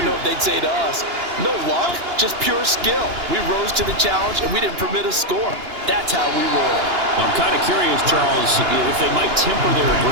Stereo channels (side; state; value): left; late; 2.9 ms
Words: know what they'd say to us. No luck, just pure skill. We rose to the challenge, and we didn't permit a score. That's how we roll. Well, I'm kind of curious, Charles, if they might temper their